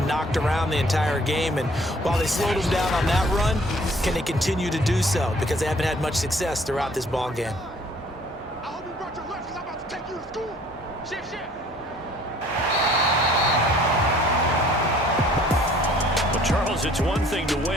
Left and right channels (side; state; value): both; normal; correlation 0.56